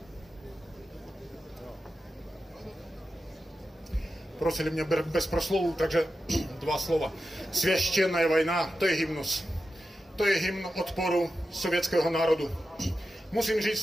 Prosili mě bez proslovů, takže 2 slova. Svěštěná vojna, to je hymnus. To je hymn odporu sovětského národu. Musím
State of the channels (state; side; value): normal; both; correlation 0.91